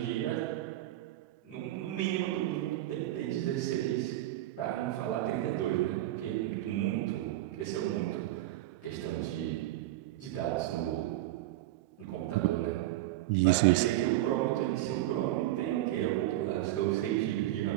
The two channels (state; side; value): quieter; left; 15.3 dB